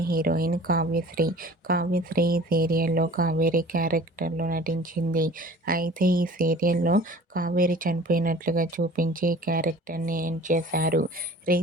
హీరోయిన్ కావ్యశ్రీ ఈ సీరియల్లో కావేరి క్యారెక్టర్లో నటించింది. అయితే ఈ సీరియల్లో కావేరి చనిపోయినట్లుగా చూపించి క్యారెక్టర్ని ఎండ్ చేశారు.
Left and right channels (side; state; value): both; normal; correlation 0.46